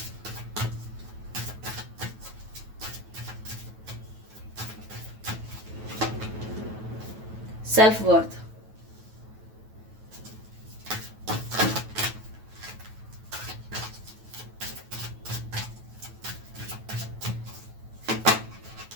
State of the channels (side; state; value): left; late; 9.2 ms